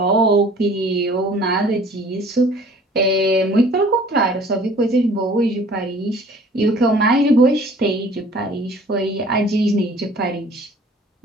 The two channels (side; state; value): both; normal; correlation 0.51